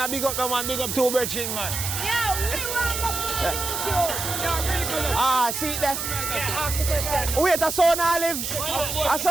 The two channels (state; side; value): noise; right; hiss, 3 dB below the sound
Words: big up no man, big up two virgin man. Yeah, we want to See there? Wait, a son Olive. A